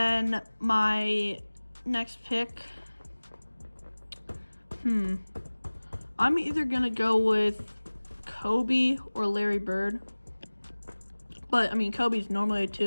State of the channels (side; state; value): both; inverted; correlation -1.00